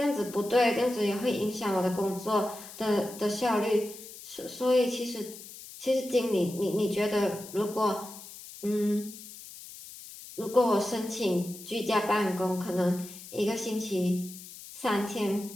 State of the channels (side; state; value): left; noise; hiss, 15 dB below the sound